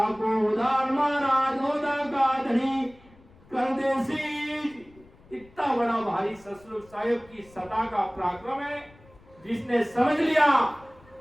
उदार महाराज ओदा का धनी कर देसी। इतना बड़ा भारी सतरूप साहेब की सता का पराक्रम है। जिसने समझ लिया,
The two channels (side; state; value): left; noise; rumble, 26 dB below the sound